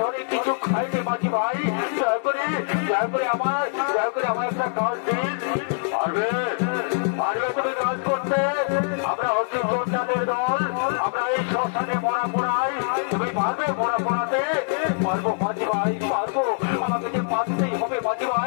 ধরে কিছু খাইনি মাঝি ভাই, দয়া করে আমার একটা কাজ দিন। পারবে তুমি কাজ করতে? আমরা হচ্ছি যোদ্ধাদের দল, আমরা এই শ্মশানে মরা পোড়াই, তুমি পারবে মরা পোড়াতে? পারবো মাঝি ভাই, পারবো, আমাকে যে পারতেই হবে মাঝি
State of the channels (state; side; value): silent; right; 63 dB below the other